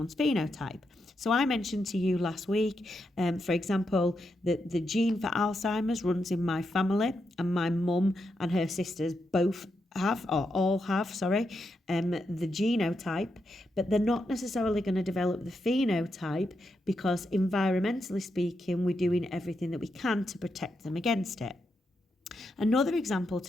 phenotype. So I mentioned to you last week, for example, that the gene for Alzheimer's runs in my family, and my mum and her sisters both have, or all have, the genotype, but they're not necessarily going to develop the phenotype because environmentally speaking, we're doing everything that we can to protect them against it. Another example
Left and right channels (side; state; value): both; normal; correlation 0.84